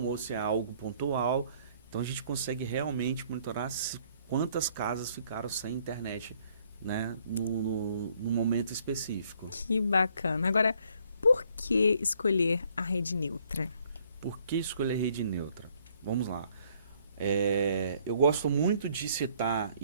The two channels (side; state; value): both; inverted; correlation -0.64